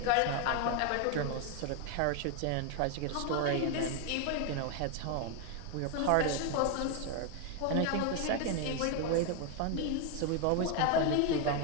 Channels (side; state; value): both; different; correlation 0.01